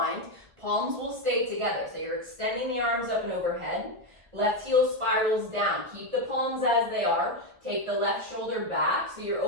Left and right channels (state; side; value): late; left; 1.6 ms